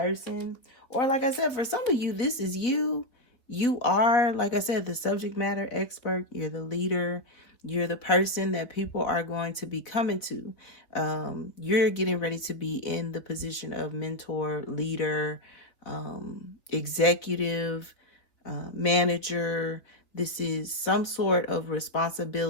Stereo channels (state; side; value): late; right; 3.3 ms